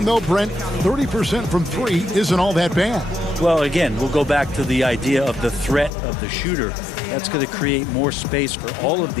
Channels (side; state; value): right; drops out; at 5.9 s